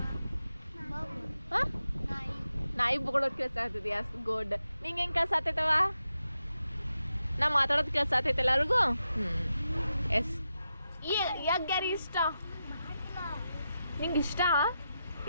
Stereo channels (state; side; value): inverted; both; correlation -0.87